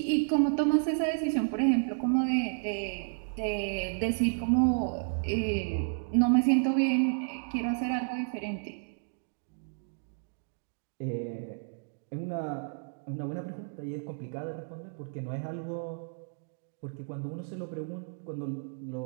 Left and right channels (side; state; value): left; silent; digital silence